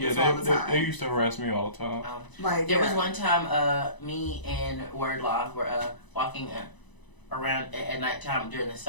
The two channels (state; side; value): late; right; 1.0 ms